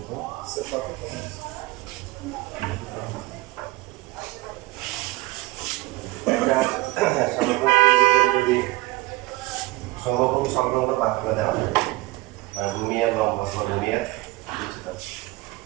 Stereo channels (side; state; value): left; quieter; 20.7 dB